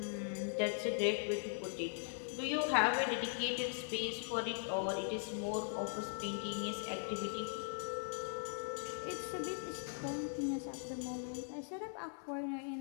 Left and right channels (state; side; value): silent; right; 51 dB below the other